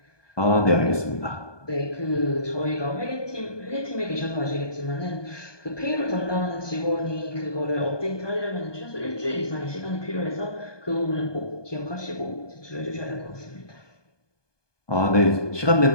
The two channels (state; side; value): late; right; 1.2 ms